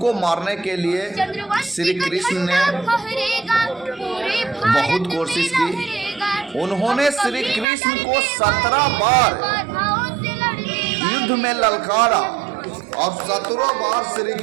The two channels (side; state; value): left; drops out; at 7.7 s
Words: मारने के लिए श्री कृष्ण ने बहुत कोशिश की। उन्होंने श्री कृष्ण को 17 बार युद्ध में ललकारा और 17 बार श्री